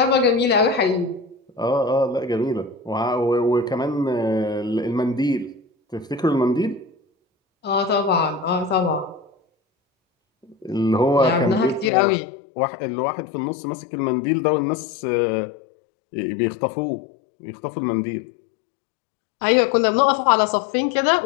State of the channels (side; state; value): right; drops out; at 11.9 s